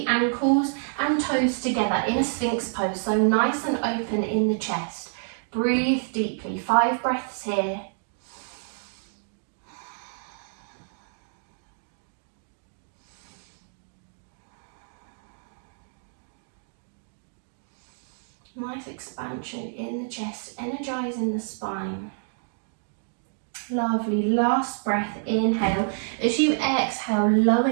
ankles and toes together in a Sphinx pose, so nice and open in the chest. Breathe deeply, 5 breaths here. Nice expansion in the chest, energizing the spine. Lovely, last breath, inhale. As you exhale, lower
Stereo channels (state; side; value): silent; left; digital silence